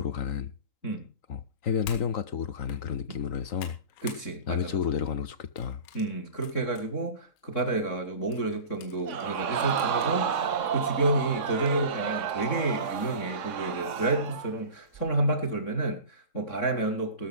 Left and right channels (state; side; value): late; right; 3.6 ms